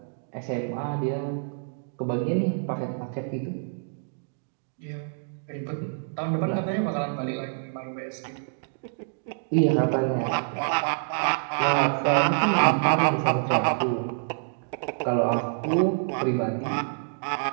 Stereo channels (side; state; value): left; silent; digital silence